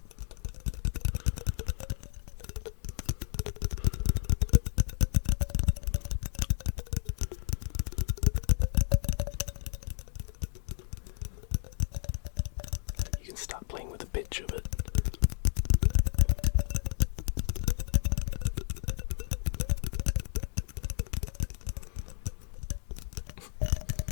You can start playing with the pitch of it.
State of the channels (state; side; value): silent; right; 56 dB below the other